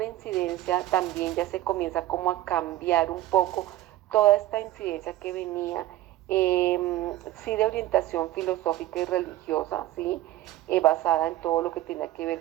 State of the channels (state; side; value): quieter; left; 15.1 dB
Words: incidencia, también ya se comienza como a cambiar un poco toda esta incidencia que venía, sí de orientación filosófica y religiosa, sí, basada en todo lo que tenía que